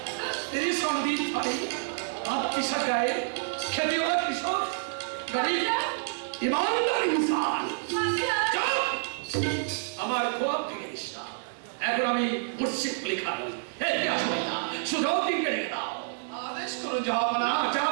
तेरी संदीप भाई आप किसा गाए खेती वाला किशोर गरीब ईमानदार इंसान আমার খোয়াব ভেঙে দিস না। এখন আমি মুর্শিদ লেখা নই। কি আসবে না শুধাও দিনকে রেখে দাও। আদেশ করুন জাহাপনা।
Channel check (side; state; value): left; silent; digital silence